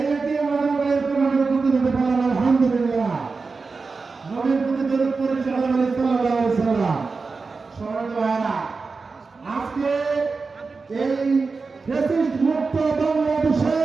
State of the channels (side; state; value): left; quieter; 4.4 dB